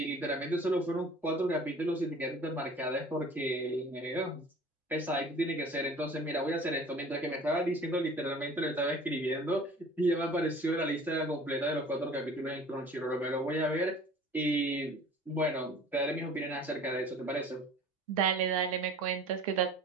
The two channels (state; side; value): normal; both; correlation 0.46